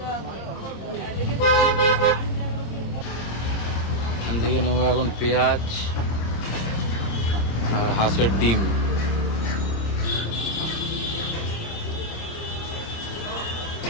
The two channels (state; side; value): late; right; 26 ms